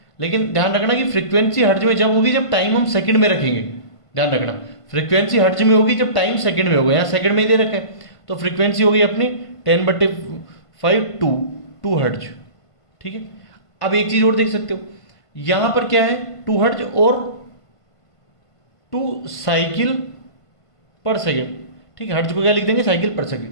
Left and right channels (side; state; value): right; late; 1.5 ms